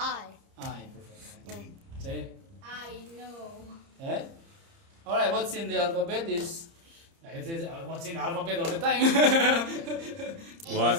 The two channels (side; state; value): left; late; 30 ms